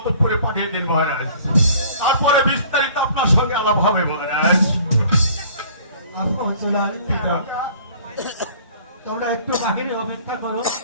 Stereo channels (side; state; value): both; inverted; correlation -0.51